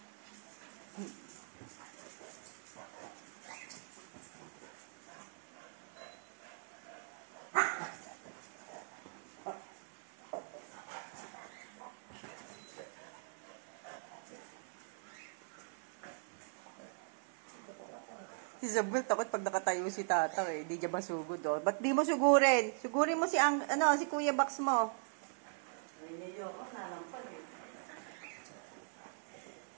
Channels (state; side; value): silent; left; 51 dB below the other